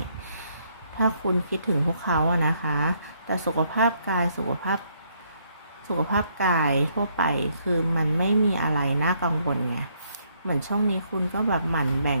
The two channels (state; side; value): inverted; both; correlation -0.71